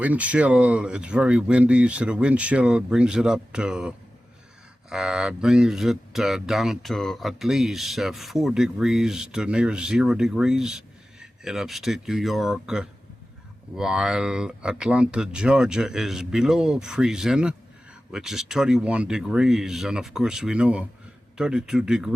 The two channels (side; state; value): both; normal; correlation 0.95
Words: chill, it's very windy, so the wind chill brings it up to down to at least 4 degrees to near 0 degrees in upstate New York, while Atlanta, Georgia is below freezing, which is 31 degrees, and of course we know 32